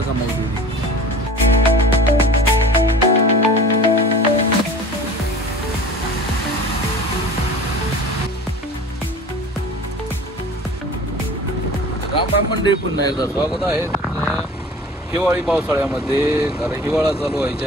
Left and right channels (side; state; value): both; normal; correlation 0.41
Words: कमावते. राम मंडळी, पुन्हा एकदा स्वागत आहे तुमचं हिवाळी पावसाळ्यामध्ये. कारण हिवाळा चालू